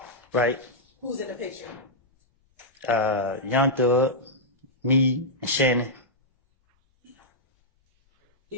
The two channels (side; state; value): both; normal; correlation -0.09